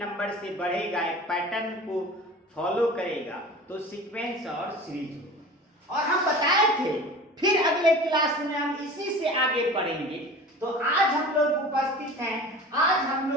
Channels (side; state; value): both; normal; correlation 0.38